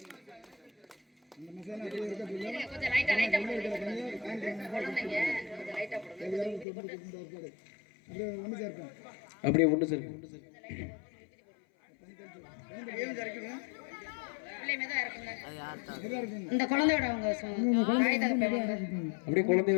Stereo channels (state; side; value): drops out; right; at 6.7 s